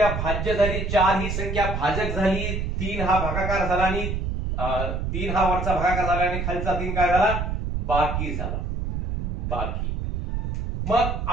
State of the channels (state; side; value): noise; right; rumble, 2 dB below the sound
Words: भाज्य झाली, 4 ही संख्या भाजक झाली, 3 हा भागाकार झाला आणि 3 हा वरचा भागाकार झाला आणि खालचा 3 काय झाला, बाकी झाला, बाकी. मग